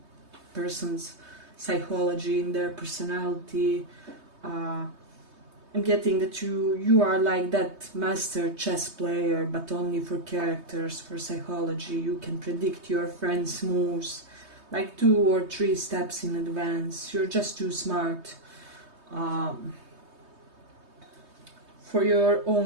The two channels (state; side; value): late; left; 3.2 ms